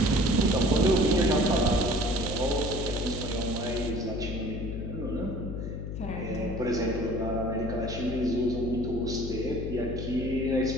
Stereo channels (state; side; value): noise; left; hum, 6 dB below the sound